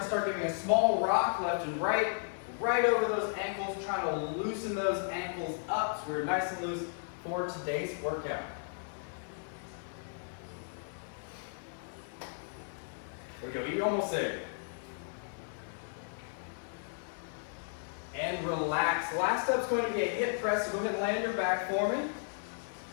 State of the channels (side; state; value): right; silent; digital silence